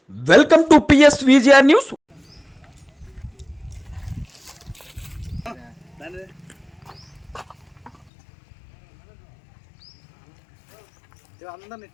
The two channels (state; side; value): drops out; right; at 8.1 s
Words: Welcome to PSVGR news.